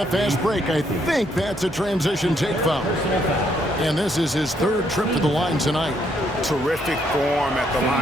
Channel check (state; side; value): normal; both; correlation 0.72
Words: fast break. I think that's a transition take foul. And this is his 3rd trip to the line tonight. Terrific form at the